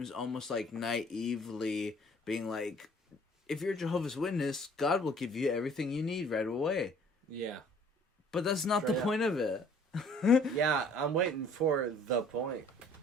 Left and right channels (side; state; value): both; normal; correlation 0.55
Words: almost like naively being like, if you're Jehovah's Witness, God will give you everything you need right away. Yeah. But that's not the point of it. Yeah, I'm waiting for the point.